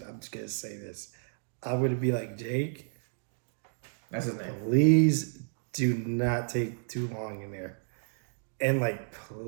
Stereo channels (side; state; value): left; silent; digital silence